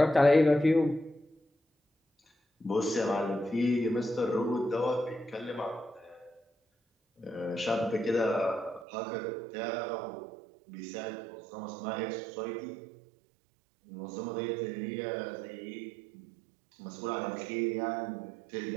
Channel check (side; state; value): left; drops out; at 8.8 s